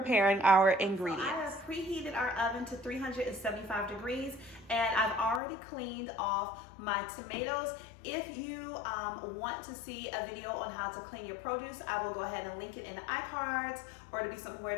our ingredients. So I have preheated our oven to 375 degrees, and I've already cleaned off my tomatoes. If you want to see a video on how to clean your produce, I will go ahead and link it in the iCards, or it'll be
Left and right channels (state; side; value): drops out; right; at 5.4 s